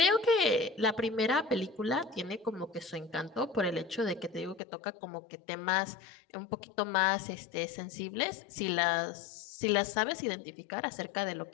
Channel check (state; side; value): drops out; right; at 4.6 s